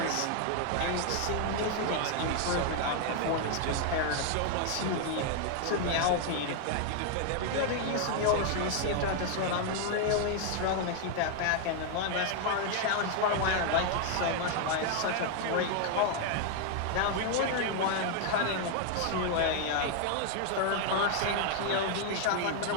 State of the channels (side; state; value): both; different; correlation 0.00